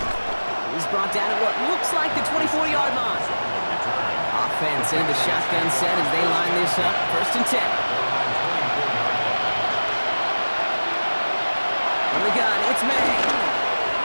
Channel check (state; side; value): inverted; both; correlation -1.00